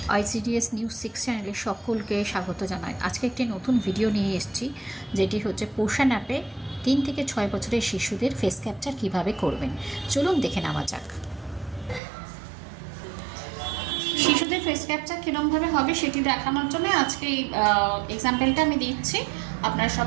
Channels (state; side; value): drops out; left; at 12.0 s